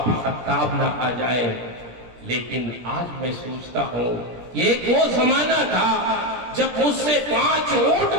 خطاب نہ آ جائے. لیکن آج میں سوچتا ہوں یہ ایک وہ زمانہ تھا جب مجھ سے 5 اونٹ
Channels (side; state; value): left; late; 17 ms